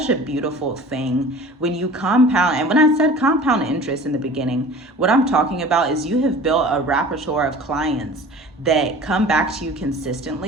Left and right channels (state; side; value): normal; both; correlation 0.42